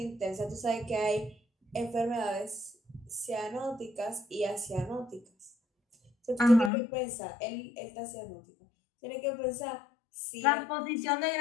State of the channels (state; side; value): drops out; right; at 6.7 s